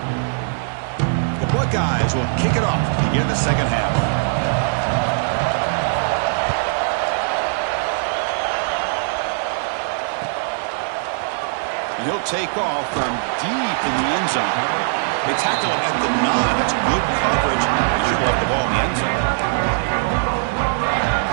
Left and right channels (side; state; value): left; silent; digital silence